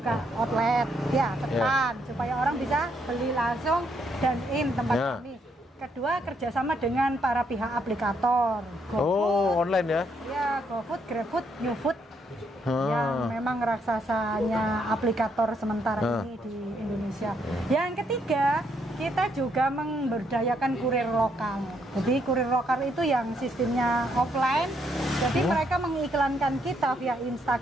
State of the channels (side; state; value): both; normal; correlation 0.74